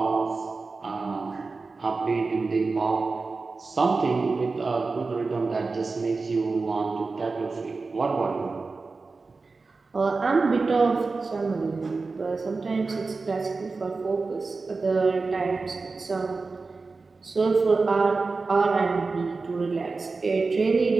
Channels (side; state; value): left; quieter; 4.0 dB